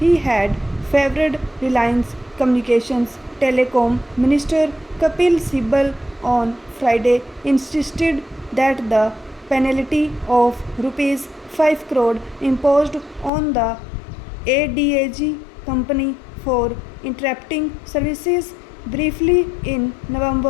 had favored Reliance Communications Telecom Minister Kapil Sibal on Friday insisted that the penalty of rupees 5 crore imposed on the ADAG company for interrupting services briefly in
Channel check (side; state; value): right; drops out; at 13.3 s